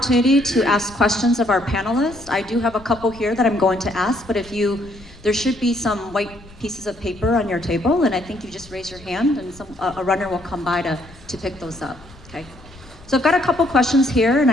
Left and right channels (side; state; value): left; noise; rumble, 22 dB below the sound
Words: to ask questions of our panelists. I do have a couple here that I'm going to ask, but there should be some white pieces of paper on your table, and I think you just raise your hand, and a runner will come by to pick those up. Okay. So I've got a couple questions here, and